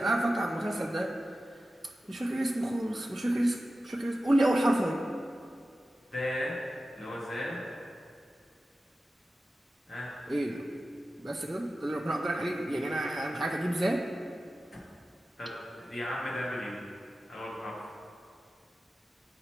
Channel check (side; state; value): both; normal; correlation 0.94